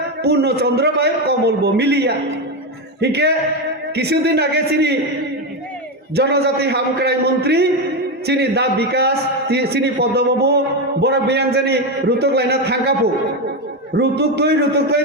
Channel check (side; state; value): both; normal; correlation 0.11